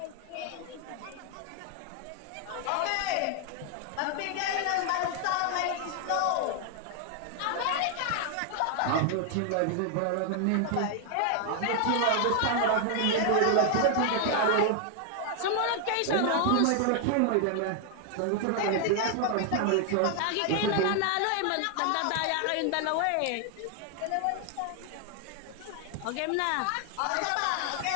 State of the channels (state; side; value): different; both; correlation 0.00